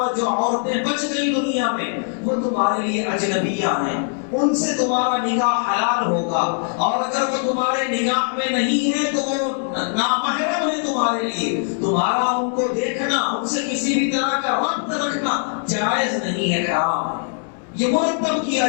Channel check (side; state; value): right; silent; 56 dB below the other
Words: جو عورتیں بچ گئی دنیا میں وہ تمہارے لیے اجنبیہ ہیں، ان سے تمہارا نکاح حلال ہوگا، اور اگر وہ تمہارے نگاہ میں نہیں ہے تو وہ نامحرم ہے تمہارے لیے، تمہارا ان کو دیکھنا، ان سے کسی بھی طرح کا ربط رکھنا جائز نہیں ہے، حرام ہے۔ یہ مرتب کیا